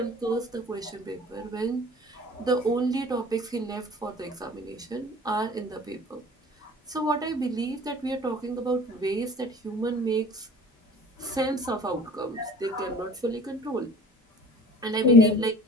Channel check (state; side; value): normal; both; correlation 0.45